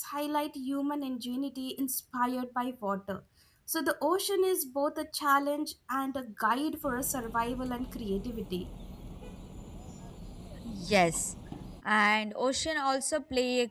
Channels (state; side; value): identical; both; correlation 1.00